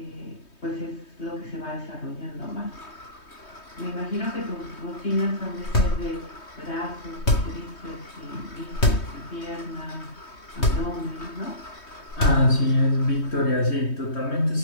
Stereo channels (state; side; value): late; right; 3.2 ms